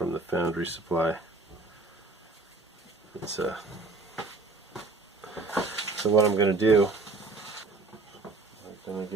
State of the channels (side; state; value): left; quieter; 3.5 dB